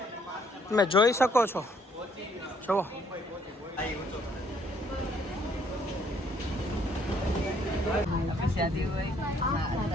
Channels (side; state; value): both; normal; correlation 0.66